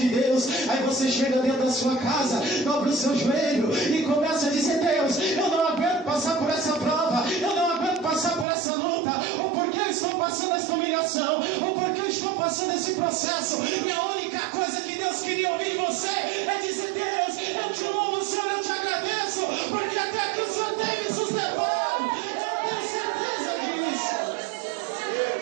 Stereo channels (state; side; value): drops out; left; at 8.5 s